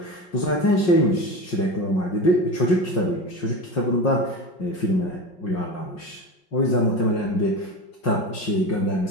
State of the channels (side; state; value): right; late; 5.5 ms